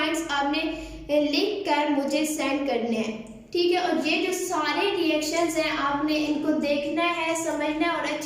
आपने लिख कर मुझे सेंड करने हैं, ठीक है। और ये जो सारे रिएक्शंस हैं आपने इनको देखना है, समझना है और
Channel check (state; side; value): identical; both; correlation 1.00